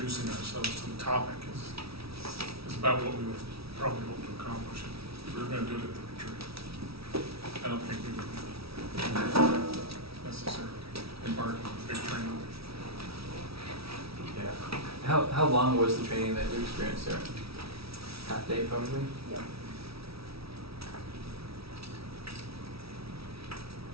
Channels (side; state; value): left; late; 0.76 ms